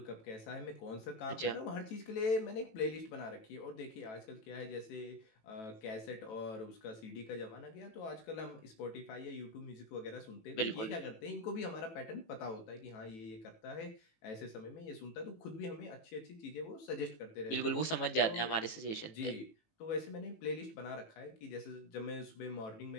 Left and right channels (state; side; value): late; right; 18 ms